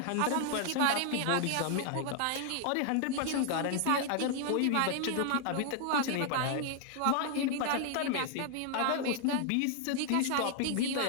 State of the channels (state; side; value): different; both; correlation 0.00